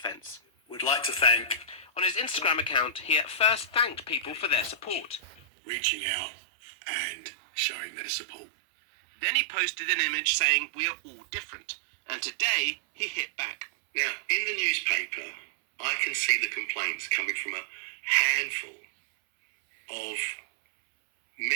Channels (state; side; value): drops out; left; at 5.4 s